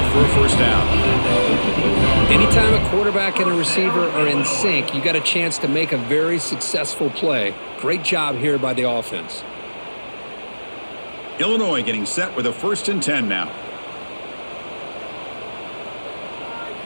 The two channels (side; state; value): both; inverted; correlation -1.00